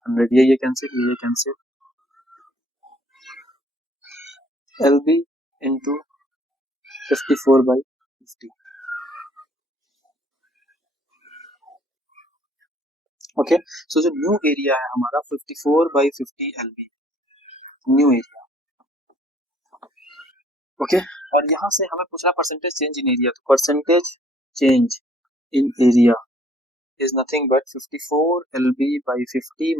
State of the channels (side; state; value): both; normal; correlation 0.62